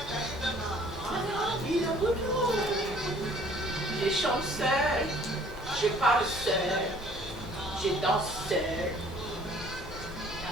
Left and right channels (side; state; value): left; noise; hum, 17 dB below the sound